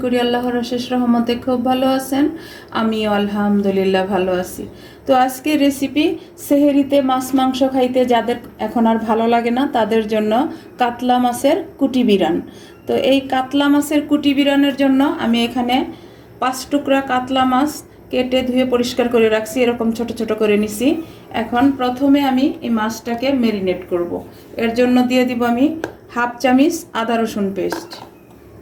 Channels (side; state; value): both; identical; correlation 1.00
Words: করি আল্লাহর অশেষ রহমতে খুব ভালো আছেন। আমিও আলহামদুলিল্লাহ ভালো আছি। তো আজকে রেসিপি সেহেরিতে মাছ মাংস খাইতে যাদের এখন আর ভালো লাগে না তাদের জন্য কাতলা মাছের কুটি বিরান। তো এই কাতলা মাছের কুটি বিরানের জন্য আমি এখানে 5 টুকরা কাতলা মাছ কেটে ধুয়ে পরিষ্কার করে রাখছি, এরকম ছোট ছোট করে নিছি। এখন প্রথমে আমি এই মাছটাকে ম্যারিনেট করব। এর জন্য দিয়ে দিব আমি হাফ চামচ আদা রসুন পেস্ট,